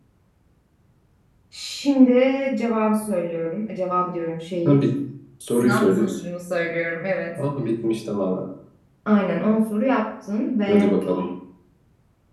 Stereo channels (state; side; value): identical; both; correlation 1.00